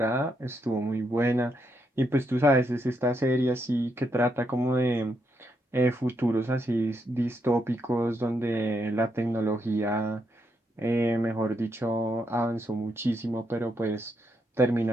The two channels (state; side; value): normal; both; correlation 0.79